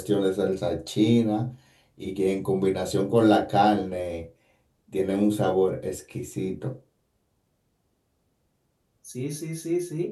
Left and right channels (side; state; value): both; identical; correlation 1.00